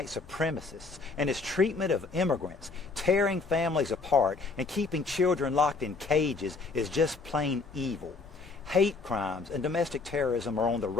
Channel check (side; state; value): right; quieter; 4.1 dB